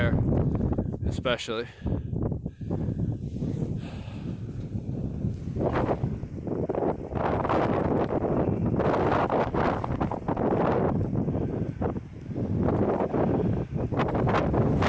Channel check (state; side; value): identical; both; correlation 1.00